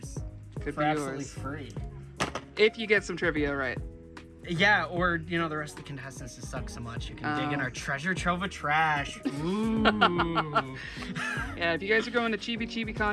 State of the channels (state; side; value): identical; both; correlation 1.00